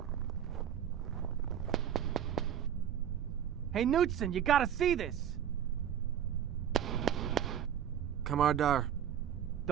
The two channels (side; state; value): left; quieter; 9.7 dB